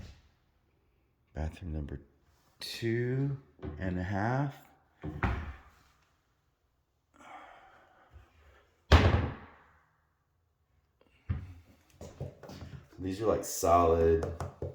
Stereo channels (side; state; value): both; identical; correlation 1.00